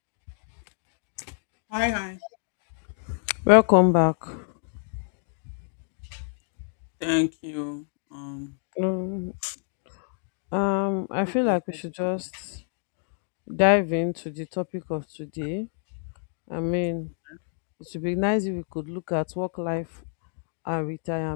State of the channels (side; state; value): right; silent; digital silence